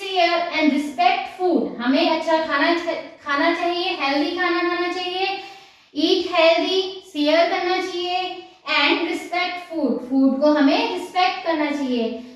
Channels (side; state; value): both; identical; correlation 1.00